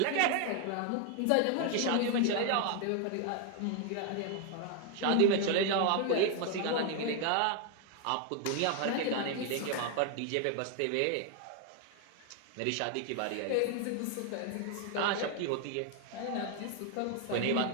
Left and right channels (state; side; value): different; both; correlation 0.00